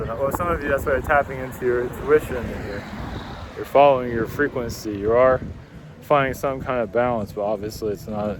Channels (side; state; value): both; identical; correlation 1.00